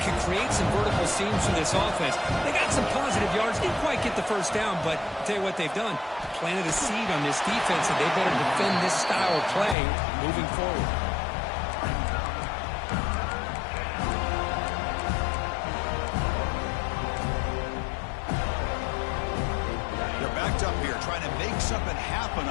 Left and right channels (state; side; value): drops out; right; at 9.8 s